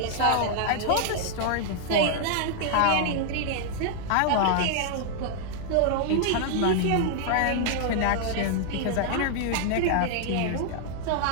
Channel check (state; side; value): different; both; correlation -0.01